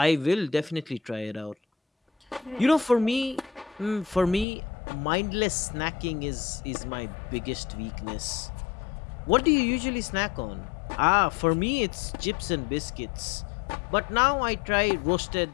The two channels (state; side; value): drops out; right; at 4.5 s